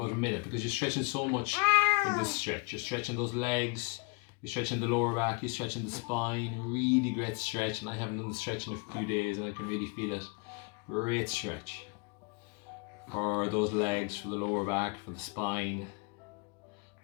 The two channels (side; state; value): right; quieter; 31.5 dB